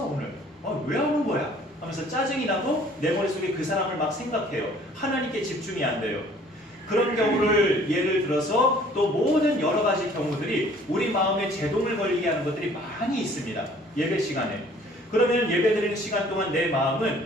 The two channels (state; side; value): normal; both; correlation 0.55